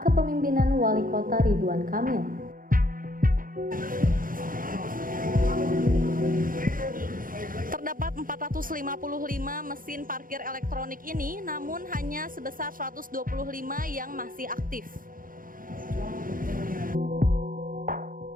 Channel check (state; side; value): late; left; 0.40 ms